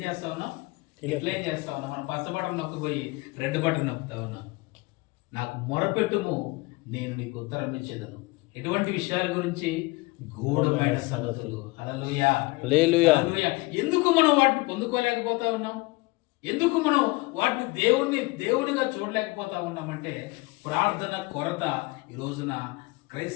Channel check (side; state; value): right; quieter; 24.0 dB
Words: చేస్తా ఉన్నాం? డిక్లైన్ చేస్తా ఉన్నాం. మనం పచ్చ బటన్ నొక్కిపోయి రెడ్ బటన్ నొక్కుతా ఉన్నాం. నాకు మొరపెట్టుము, నేను నీకు ఉత్తరం ఇచ్చేదను. ఎటువంటి విషయాల గురించి? గూఢమైన సంగతులు. హల్లెలూయా. హల్లెలూయా. ఎందుకు మనం వాటిని పొందుకోలేకపోతా ఉన్నాం? ఎందుకు మనం వాటిని దేవునిగా చూడలేకపోతా ఉన్నామంటే ప్రార్థన కొరత ఈ రోజున